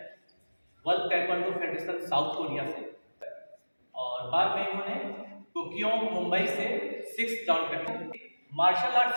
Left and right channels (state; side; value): inverted; both; correlation -1.00